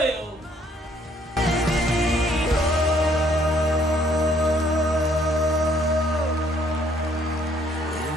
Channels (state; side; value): normal; both; correlation 0.65